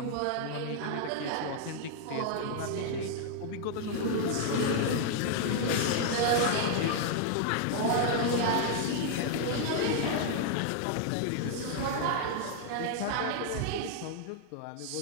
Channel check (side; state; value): both; different; correlation 0.00